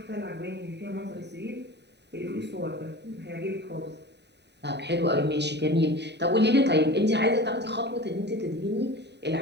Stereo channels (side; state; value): left; late; 0.50 ms